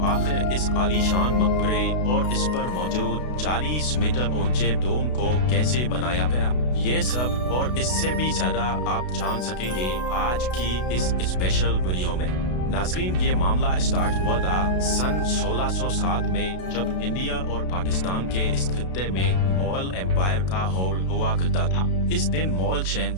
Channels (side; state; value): right; late; 32 ms